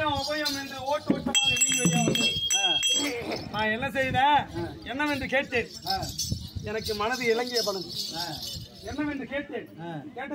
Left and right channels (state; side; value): identical; both; correlation 1.00